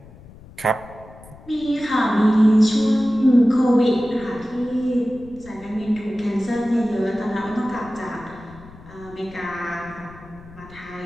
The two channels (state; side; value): noise; left; rumble, 21 dB below the sound